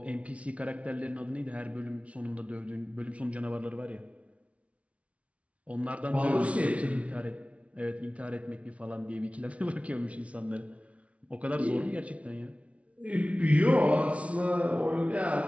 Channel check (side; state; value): left; late; 0.064 ms